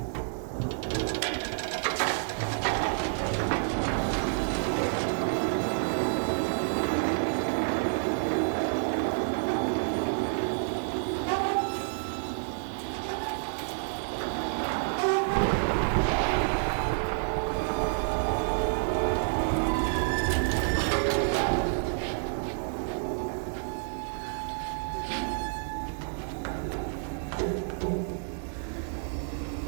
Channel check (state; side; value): silent; left; digital silence